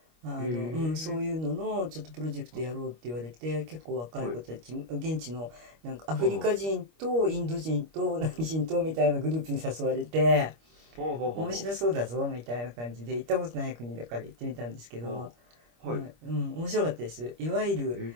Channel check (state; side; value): late; left; 25 ms